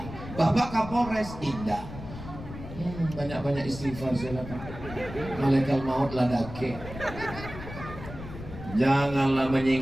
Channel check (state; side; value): noise; left; rumble, 12 dB below the sound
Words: Bapak Kapolres? Indah. Banyak-banyak istighfar saya lakukan. Malaikat maut ladake. Janganlah